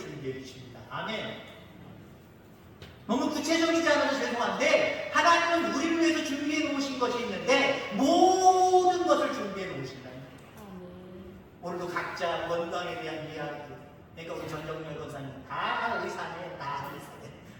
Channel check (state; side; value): identical; both; correlation 1.00